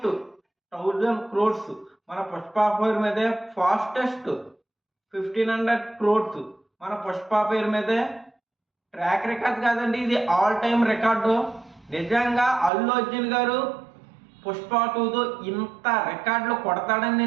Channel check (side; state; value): left; drops out; at 12.7 s